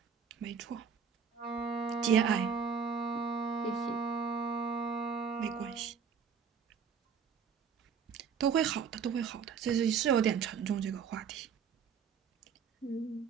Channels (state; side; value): quieter; left; 6.5 dB